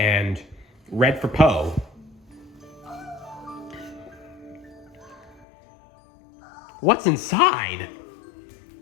red for Po. What's inside?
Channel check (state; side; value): drops out; right; at 5.5 s